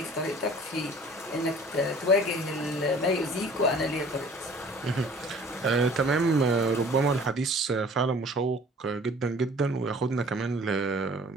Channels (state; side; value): normal; both; correlation 0.49